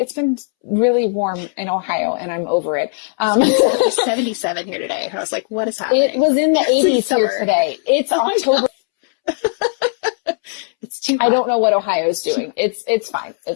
been really warm in Ohio, and I'm over it. It's 77 here today. I was like, what is happening? It was in the 80s here today. It's October. It's too hot. I don't know what Ohio's doing. It's fine.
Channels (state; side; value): silent; right; 68 dB below the other